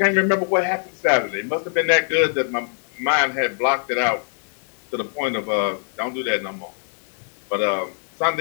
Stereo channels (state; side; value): silent; right; 64 dB below the other